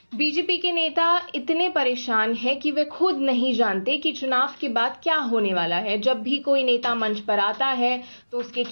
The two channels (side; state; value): both; inverted; correlation -1.00